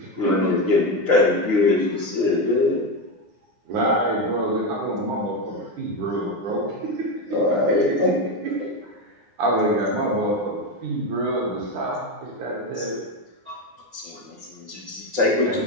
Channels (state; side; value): late; left; 9.6 ms